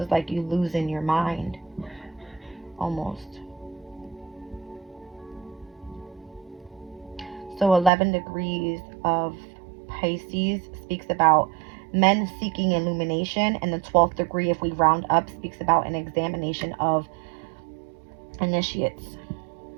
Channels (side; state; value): left; drops out; at 7.9 s